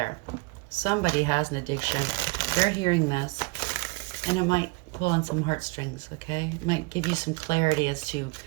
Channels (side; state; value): left; quieter; 27.9 dB